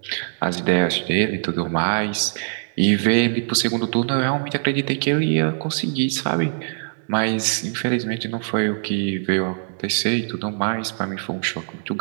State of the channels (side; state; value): left; silent; digital silence